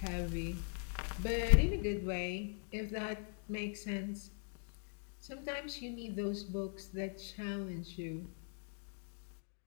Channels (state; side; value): silent; right; 51 dB below the other